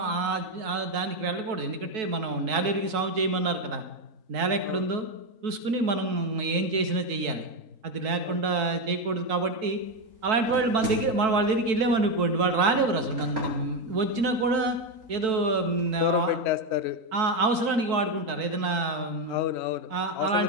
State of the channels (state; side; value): late; left; 4.6 ms